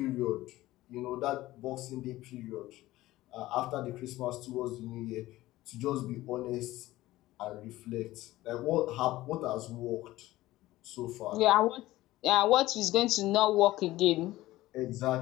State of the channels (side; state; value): right; quieter; 16.9 dB